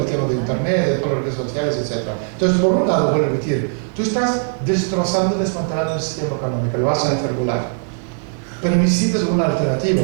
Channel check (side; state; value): left; silent; digital silence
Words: el tema de internet, de todas las redes sociales, etc. Entonces, por un lado, voy a repetir, tú estás destrozando, desmantelando el sistema económico, lo vas a hacer volar. Pero necesitas una alternativa,